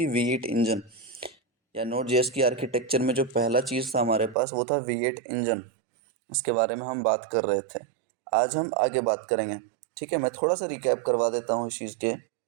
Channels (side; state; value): left; drops out; at 4.4 s